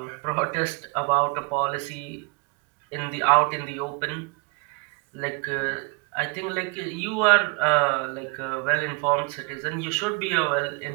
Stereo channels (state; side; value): quieter; left; 29.5 dB